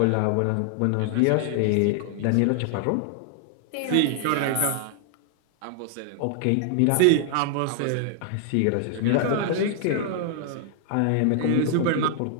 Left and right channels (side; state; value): both; different; correlation 0.00